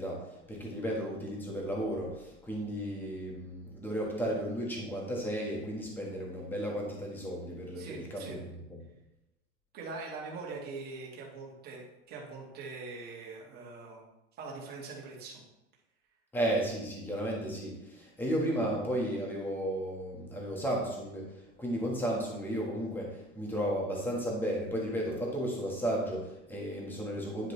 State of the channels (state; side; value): normal; both; correlation 0.52